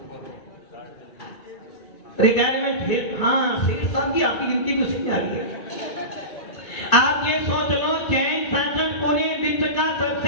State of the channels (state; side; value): late; right; 2.6 ms